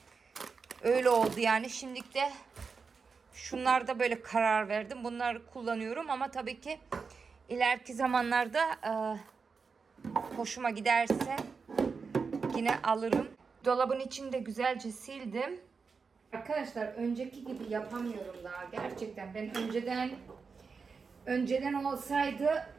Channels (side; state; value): left; quieter; 5.1 dB